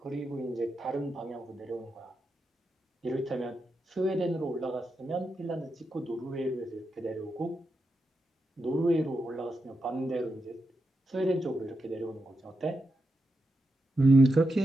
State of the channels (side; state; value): both; normal; correlation 0.87